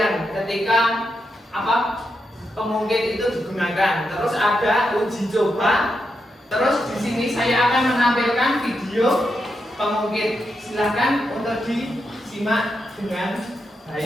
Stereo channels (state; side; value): normal; both; correlation 0.85